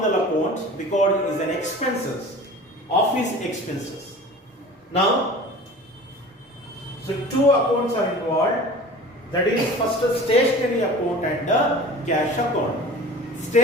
account because it is an expenses, office expenses. Now, so two accounts are involved. That is first a stationery account and a cash account.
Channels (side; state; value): both; normal; correlation 0.40